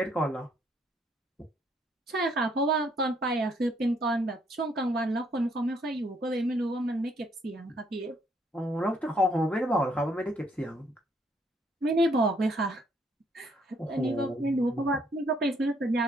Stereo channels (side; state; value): both; normal; correlation 0.69